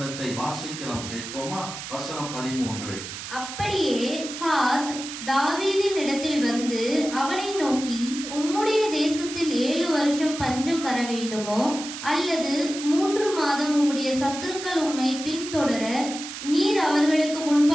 வாசிக்கலாம், கேட்போமா? வசனம் 13. அப்படியே காத் தாவீதின் இடத்தில் வந்து அவனை நோக்கி, உம்முடைய தேசத்தில் 7 வருஷம் பஞ்சம் வர வேண்டுமோ, அல்லது 3 மாதம் உம்முடைய சத்துருக்கள் உம்மை பின்தொடர நீர் அவர்களுக்கு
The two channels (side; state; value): right; noise; hiss, 9 dB below the sound